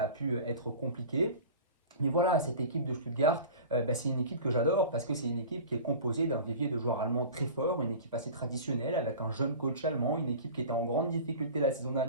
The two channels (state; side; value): inverted; both; correlation -0.36